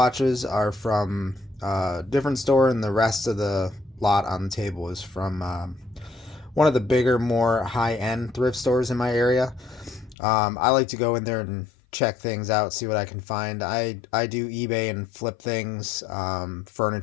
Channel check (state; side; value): drops out; right; at 10.2 s